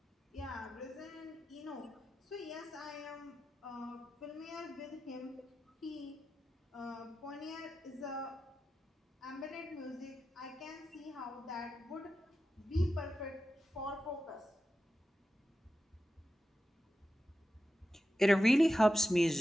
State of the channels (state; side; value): normal; both; correlation 0.91